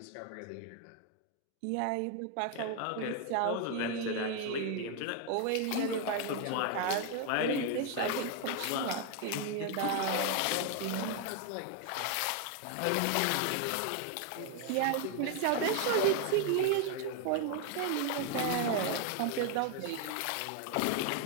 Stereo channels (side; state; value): both; different; correlation 0.01